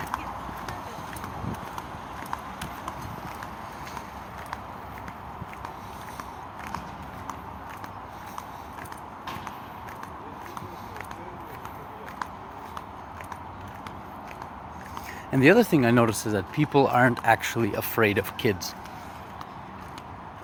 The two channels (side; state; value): both; identical; correlation 1.00